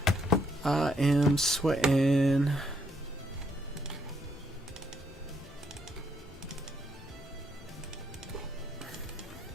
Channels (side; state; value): both; normal; correlation 0.73